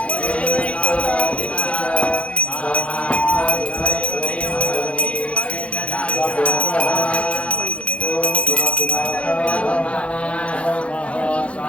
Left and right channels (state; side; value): late; right; 0.062 ms